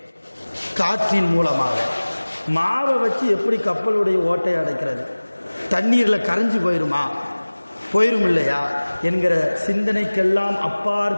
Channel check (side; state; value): both; inverted; correlation -1.00